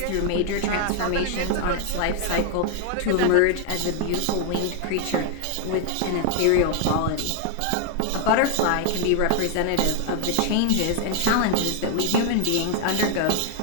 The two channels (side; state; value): both; different; correlation 0.00